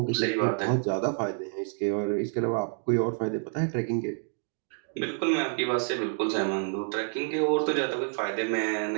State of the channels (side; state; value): left; silent; 59 dB below the other